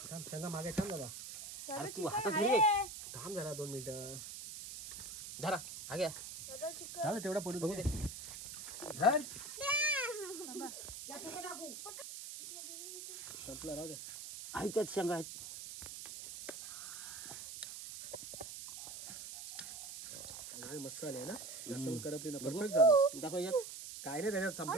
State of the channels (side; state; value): right; noise; hiss, 10 dB below the sound